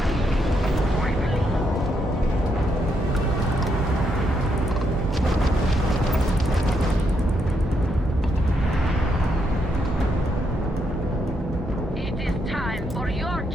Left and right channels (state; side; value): normal; both; correlation 0.78